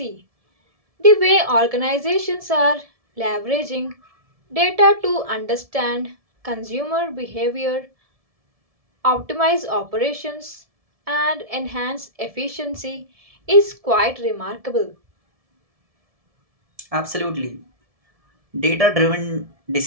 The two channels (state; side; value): late; left; 1.7 ms